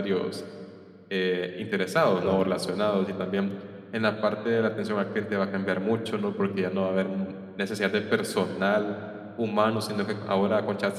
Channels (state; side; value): identical; both; correlation 1.00